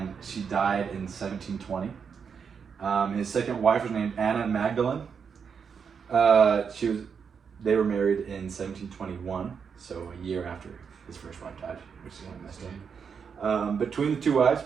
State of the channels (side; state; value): left; quieter; 6.5 dB